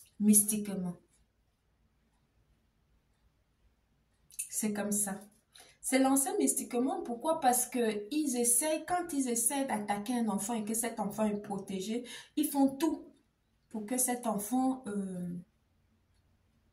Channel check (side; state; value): both; identical; correlation 1.00